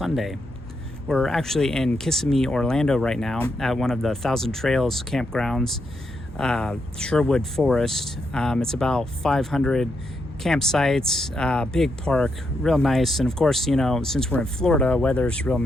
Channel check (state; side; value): normal; both; correlation 0.81